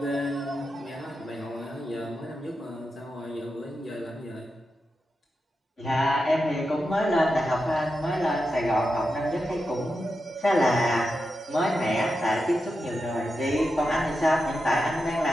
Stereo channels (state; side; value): normal; both; correlation 0.88